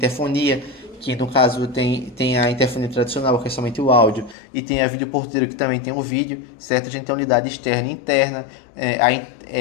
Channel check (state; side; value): drops out; right; at 4.4 s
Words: que no caso tem a interfonia tradicional, que é somente o áudio, e tem a vídeo porteiro, que também tem o vídeo, certo? A gente tem a unidade externa e interna,